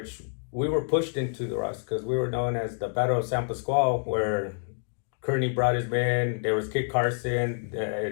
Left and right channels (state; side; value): silent; right; digital silence